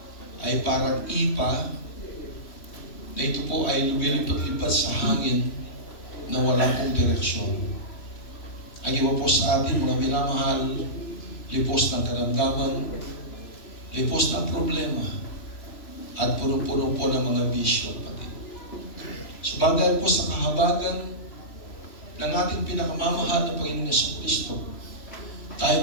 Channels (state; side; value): late; right; 3.0 ms